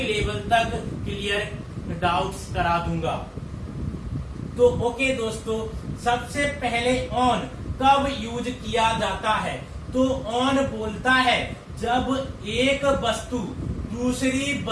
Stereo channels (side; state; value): both; identical; correlation 1.00